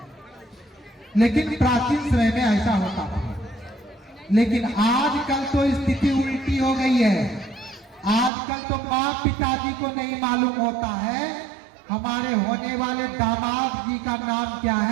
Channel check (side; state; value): left; drops out; at 8.3 s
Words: लेकिन प्राचीन समय में ऐसा होता था। लेकिन आजकल तो स्थिति उल्टी हो गई है। आजकल तो माँ पिताजी को नहीं मालूम होता है हमारे होने वाले दामाद जी का नाम क्या